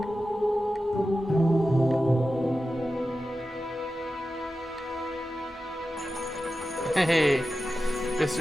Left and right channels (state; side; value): normal; both; correlation 0.93